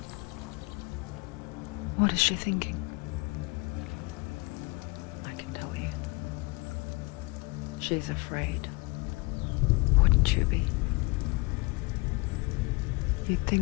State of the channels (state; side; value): quieter; right; 26.8 dB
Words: What is she thinking? I can tell you. She's afraid. Wouldn't you be? You'd